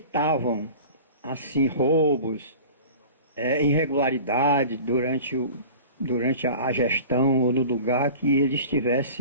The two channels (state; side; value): inverted; both; correlation -0.39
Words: assim, roubos, irregularidade durante a gestão ou no lugar que ele